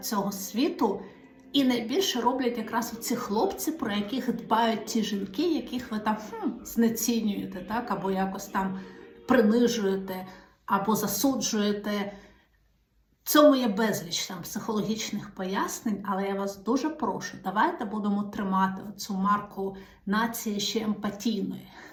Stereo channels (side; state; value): both; identical; correlation 1.00